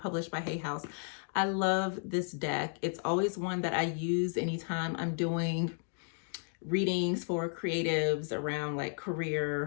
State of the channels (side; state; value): right; silent; 55 dB below the other